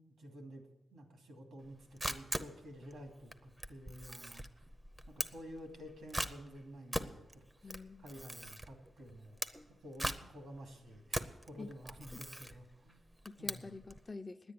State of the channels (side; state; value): both; normal; correlation 0.95